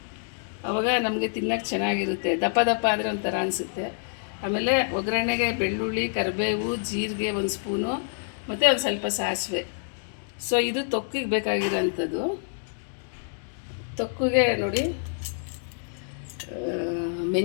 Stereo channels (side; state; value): right; silent; digital silence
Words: ಆವಾಗ ನಮಗೆ ತಿನ್ನೋಕ್ಕೆ ಚೆನ್ನಾಗಿರುತ್ತೆ. ದಪ್ಪ ದಪ್ಪ ಆದರೆ ಒಂಥರ ಅನಿಸುತ್ತೆ. ಆಮೇಲೆ ಒಗ್ಗರಣೆಗೆ ಬೆಳ್ಳುಳ್ಳಿ, ಕರಿಬೇವು, ಜೀರಿಗೆ 1 ಸ್ಪೂನು ಮತ್ತು ಒಂದು ಸ್ವಲ್ಪ ಸಾಸಿವೆ. ಸೊ ಇದು ತೊಕ್ಕಿಗೆ ಬೇಕಾಗಿರೋಂಥದ್ದು. ತೊಕ್ಕಿಗೆ ನೋಡಿ,